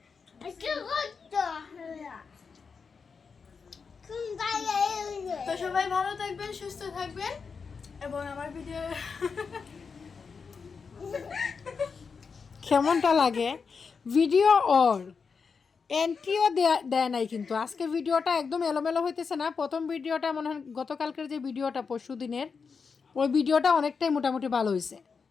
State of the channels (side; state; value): right; quieter; 5.4 dB